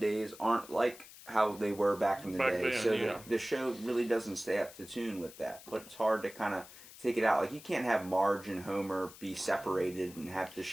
aren't like how they were back in the Back day. then, So yeah. the show really doesn't stay up to tune with that. But it's hard to kind of take it out. Like, you can't have Marge and Homer be separated and have to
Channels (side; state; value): left; noise; hiss, 18 dB below the sound